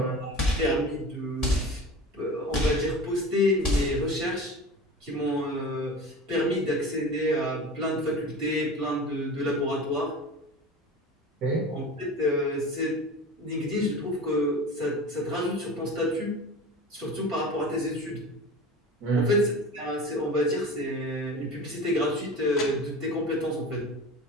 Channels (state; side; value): normal; both; correlation 0.34